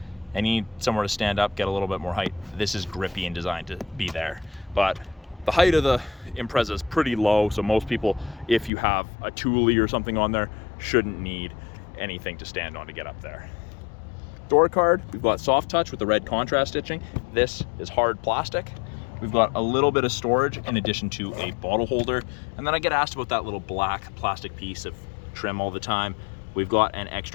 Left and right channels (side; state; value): right; drops out; at 8.7 s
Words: and need somewhere to stand up, get a little bit more height, this is grippy and designed to be there. But the height of the Impreza is pretty low. So most people, if you have a Thule or something on there, shouldn't need anything to stand on to get up there. Door card, we've got soft touch with the red contrast stitching. This is hard plastic. We've got a little bit of storage in addition to a bottle holder. And then I get asked about that little black plastic piece of trim all the time. We've got an